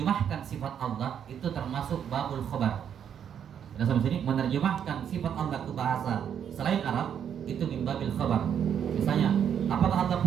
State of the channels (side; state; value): left; quieter; 8.6 dB